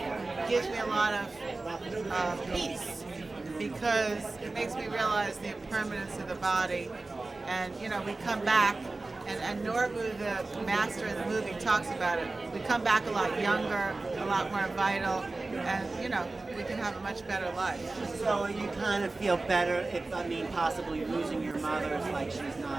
gives me a lot of peace, because it makes me realize the impermanence of the body. And we come back, and Norbu, the master in the movie, talks about it. We come back a lot younger, a lot more vital, and we can have a much better life. So you kind of feel better if, possibly losing your mother is like she's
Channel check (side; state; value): left; quieter; 3.3 dB